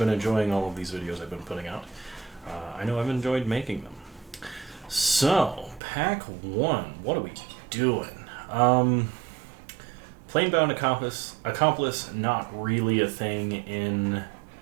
enjoying all of these videos I've been putting out. I know I've enjoyed making them. So, Pack 1, what are we doing? Planebound Accomplice, not really a thing in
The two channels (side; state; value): left; drops out; at 5.8 s